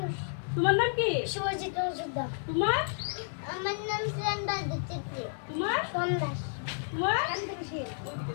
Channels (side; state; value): right; silent; 57 dB below the other